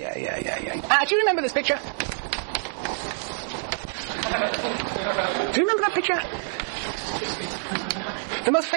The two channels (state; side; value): silent; left; 61 dB below the other